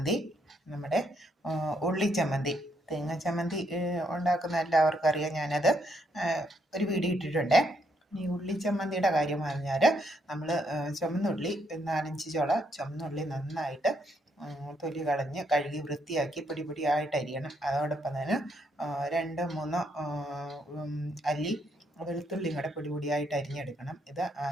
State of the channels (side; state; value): both; normal; correlation 0.74